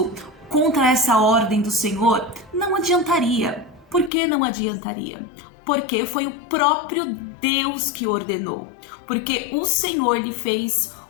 contra essa ordem do Senhor, não adiantaria. Por que não adiantaria? Porque foi o próprio Deus que ordenou. Porque o Senhor lhe fez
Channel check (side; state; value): right; drops out; at 4.1 s